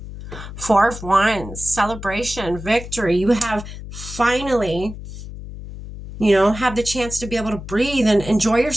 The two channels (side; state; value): left; noise; hum, 11 dB below the sound